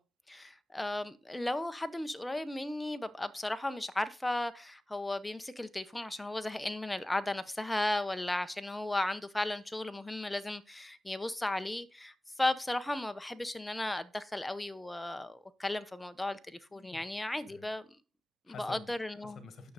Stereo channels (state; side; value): normal; both; correlation 0.97